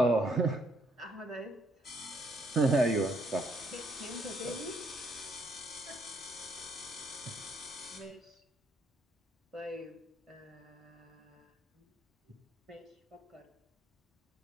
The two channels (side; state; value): both; normal; correlation 0.70